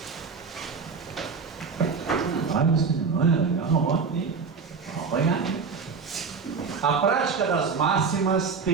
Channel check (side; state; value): left; quieter; 5.3 dB